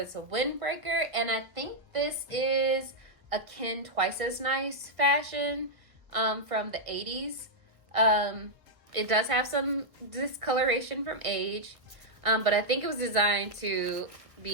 a windbreaker, and I think this is a Ken Twice as Nice fashion from the 80s. It does have some discoloration from age, but I think it was designed to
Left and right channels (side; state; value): left; late; 1.5 ms